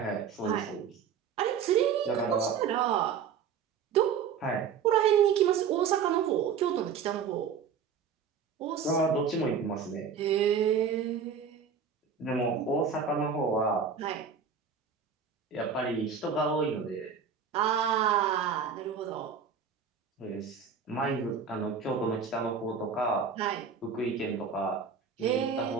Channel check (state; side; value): quieter; left; 6.6 dB